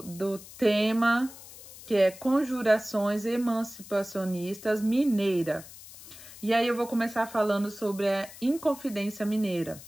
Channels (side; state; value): left; noise; hiss, 17 dB below the sound